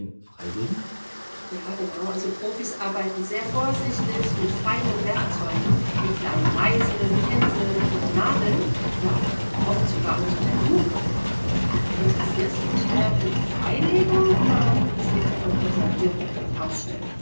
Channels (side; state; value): both; inverted; correlation -1.00